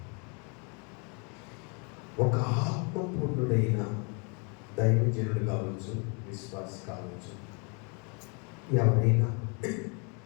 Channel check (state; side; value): quieter; right; 34.6 dB